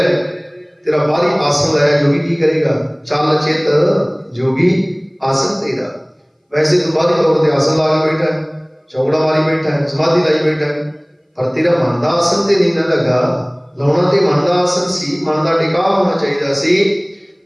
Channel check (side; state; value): both; identical; correlation 1.00